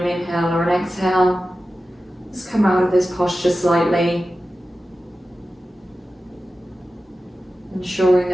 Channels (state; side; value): normal; both; correlation 0.94